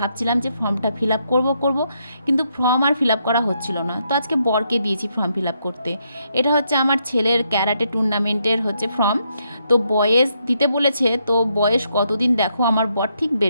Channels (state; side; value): inverted; both; correlation -0.77